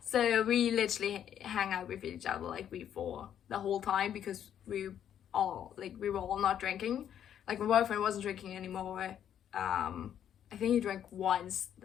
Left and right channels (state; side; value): quieter; right; 9.7 dB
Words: so we literally hang out with each other like we 4 the whole time, because we were all not drinking. Like, my boyfriend wasn't drinking anymore. I think he drank once